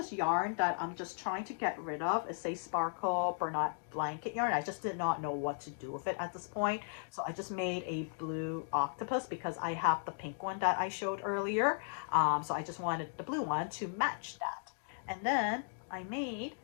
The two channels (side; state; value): right; silent; digital silence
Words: yarn that I'm just trying to get rid of. It's a sparkle Bernat blanket yarn. I just did not know what to do with it at this point. So I just made a blue octopus because I have the pink one that I showed earlier. So I just wanted the blue one to match that. And then I made